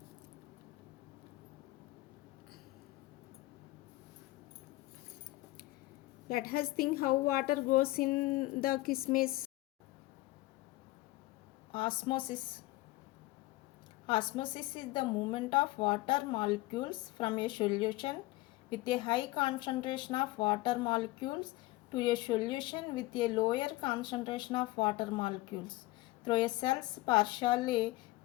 Let us think how water goes in the kismis. Osmosis. Osmosis is the movement of water molecules from a solution with a high concentration of water molecules to a solution with a lower concentration of water molecules through a cell's partially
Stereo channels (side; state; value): right; quieter; 19.3 dB